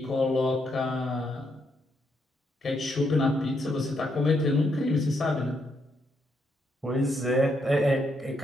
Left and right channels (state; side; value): normal; both; correlation 0.77